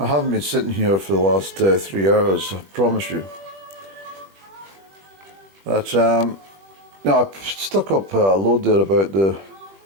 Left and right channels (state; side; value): late; left; 21 ms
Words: haven't been sitting here for the last 3 hours, I promise you. But no, I've stuck up a load there about the